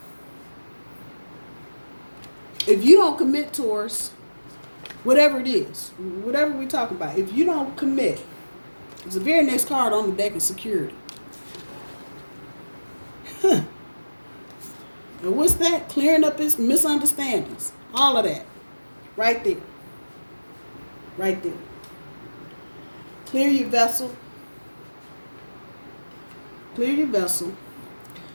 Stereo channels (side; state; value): both; inverted; correlation -1.00